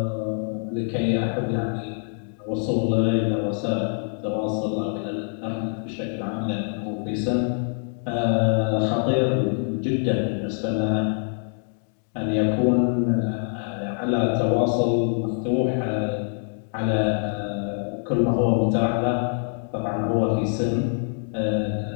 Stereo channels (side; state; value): right; silent; 61 dB below the other